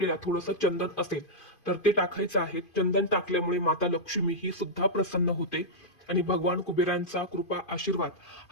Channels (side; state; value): right; late; 2.5 ms